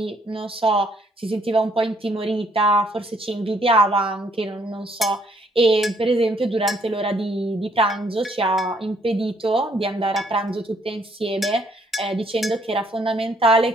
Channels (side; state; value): both; normal; correlation 0.67